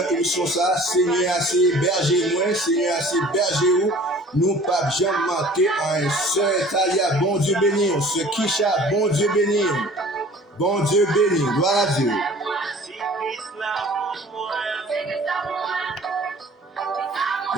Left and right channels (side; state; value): both; normal; correlation 0.48